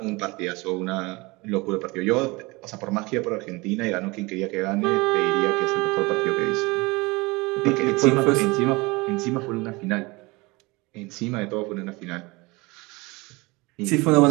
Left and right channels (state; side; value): quieter; left; 24.3 dB